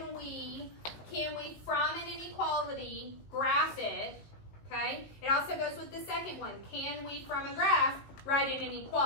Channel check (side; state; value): right; late; 19 ms